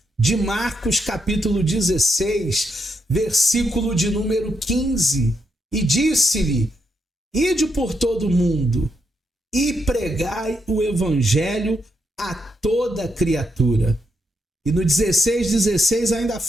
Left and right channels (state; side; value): normal; both; correlation 0.80